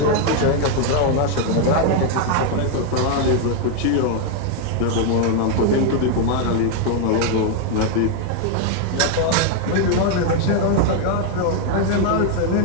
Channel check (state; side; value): different; both; correlation 0.01